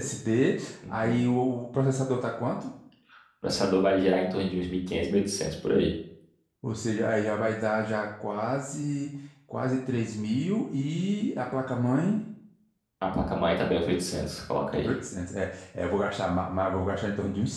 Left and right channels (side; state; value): both; identical; correlation 1.00